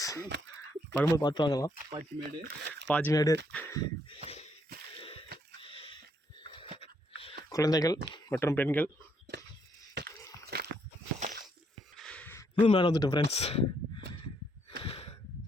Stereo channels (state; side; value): normal; both; correlation 0.72